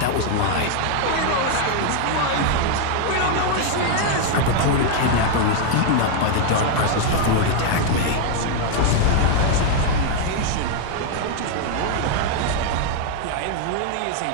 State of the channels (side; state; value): both; different; correlation 0.00